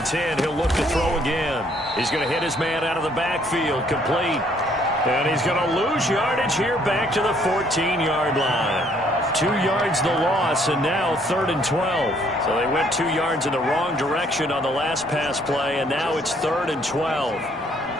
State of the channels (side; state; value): both; normal; correlation 0.65